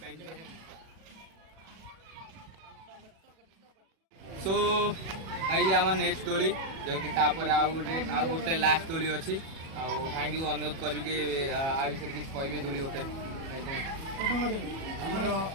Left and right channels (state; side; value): late; left; 37 ms